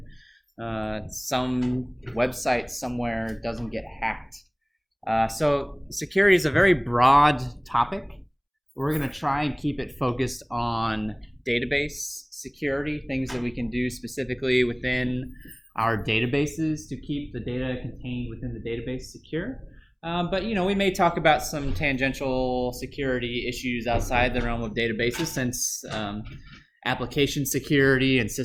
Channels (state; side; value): identical; both; correlation 1.00